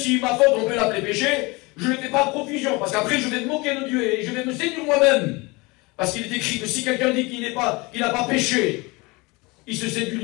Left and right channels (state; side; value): quieter; right; 25.2 dB